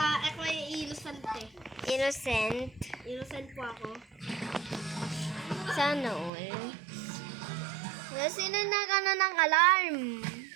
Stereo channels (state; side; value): drops out; left; at 6.3 s